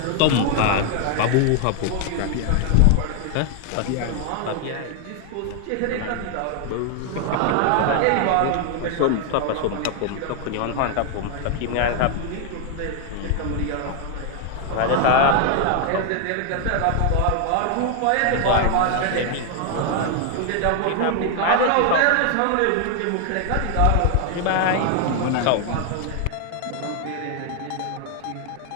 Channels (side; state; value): both; different; correlation 0.00